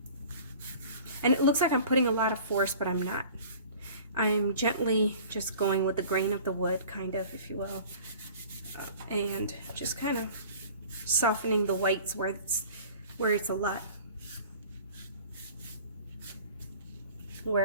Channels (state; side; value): inverted; both; correlation -0.45